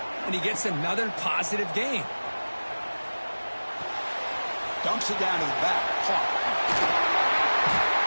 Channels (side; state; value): both; inverted; correlation -1.00